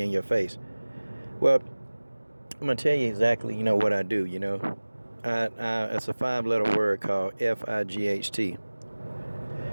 in your face? Well, I'm going to tell you exactly, what I do, it's a 5-letter word called F-I-G-H-T.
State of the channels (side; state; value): both; inverted; correlation -1.00